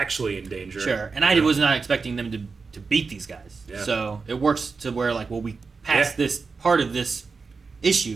in danger, Sure, and I was not expecting them to beat these guys. Yeah. So it works to where like, well, we passed this part of this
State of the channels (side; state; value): left; quieter; 4.6 dB